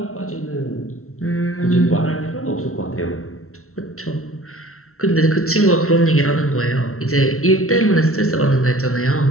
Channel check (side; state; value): right; late; 0.63 ms